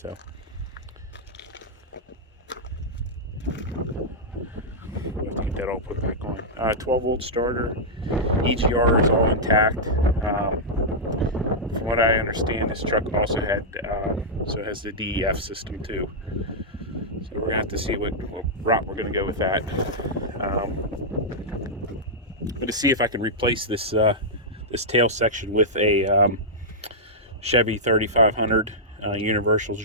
we'll have to get that all put back on. 12-volt starter. EGR is all intact. From what I understand, this truck also had so it has the DEF system too. So we're gonna have to see what route we're gonna go with that. I'm gonna see if I can replace this this tail section with a Chevy 3500 universal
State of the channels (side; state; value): both; normal; correlation -0.09